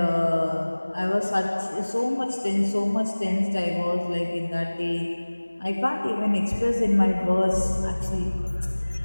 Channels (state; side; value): inverted; both; correlation -1.00